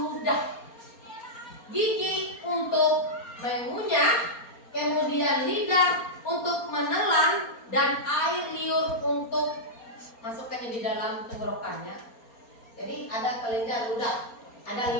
Gigi untuk mengunyah, kemudian lidah untuk menelan, dan air liur untuk masukkannya di dalam tenggorokannya. Jadi ada kelenjar ludah, ada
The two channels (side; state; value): right; late; 4.3 ms